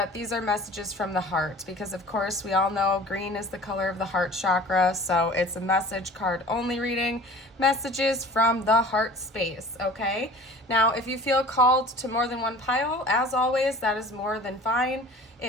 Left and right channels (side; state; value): both; normal; correlation 0.44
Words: these are messages from the heart, because of course we all know green is the color of the heart chakra, so it's a message card only reading, messages from the heart space, okay? Now, if you feel called to more than one pile, as always, that is more than fine.